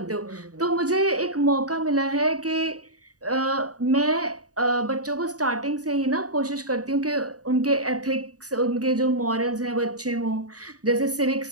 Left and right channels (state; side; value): late; left; 0.67 ms